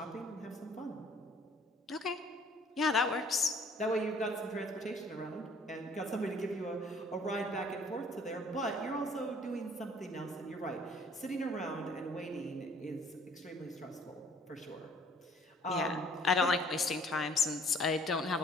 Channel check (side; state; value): both; normal; correlation 0.56